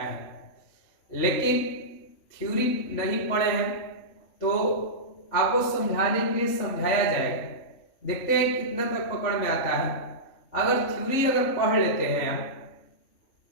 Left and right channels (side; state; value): right; late; 3.5 ms